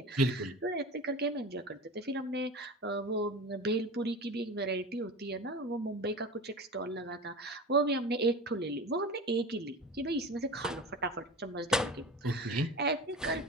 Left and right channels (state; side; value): normal; both; correlation 0.31